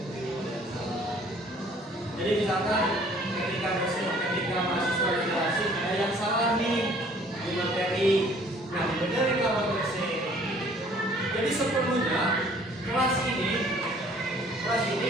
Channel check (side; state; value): both; normal; correlation 0.56